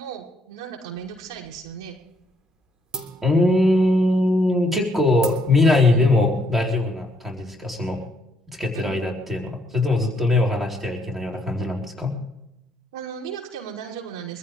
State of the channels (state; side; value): normal; both; correlation 0.71